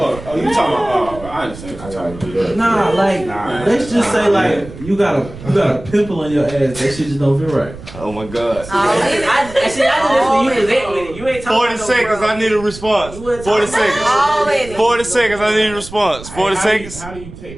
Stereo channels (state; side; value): noise; right; rumble, 15 dB below the sound